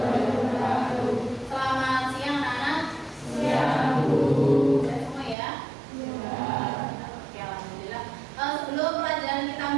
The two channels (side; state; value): left; drops out; at 5.4 s